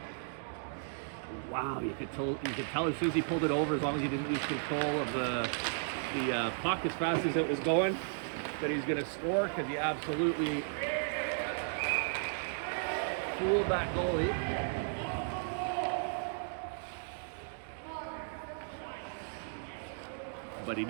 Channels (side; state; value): left; silent; digital silence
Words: Wow, you could tell as soon as he pulled it over, as long as he didn't lose control of the puck as fast as it was going, that he's going to score, because he absolutely fooled that goalie. But he